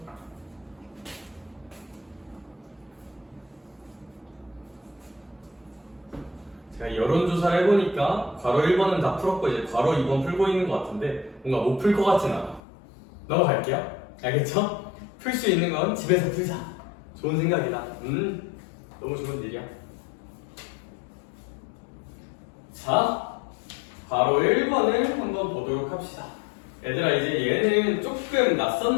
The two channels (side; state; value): right; drops out; at 12.6 s